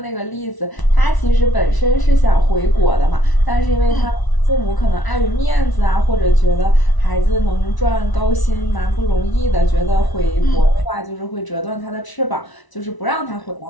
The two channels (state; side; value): late; right; 1.0 ms